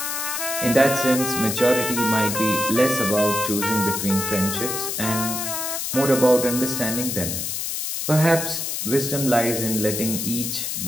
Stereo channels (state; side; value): noise; left; hiss, 3 dB below the sound